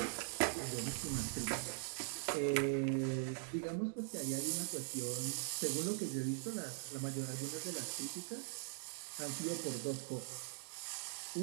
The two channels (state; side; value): silent; left; digital silence